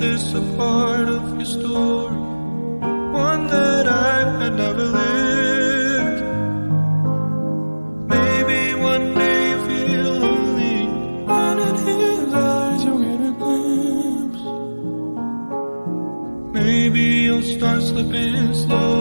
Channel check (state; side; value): inverted; both; correlation -1.00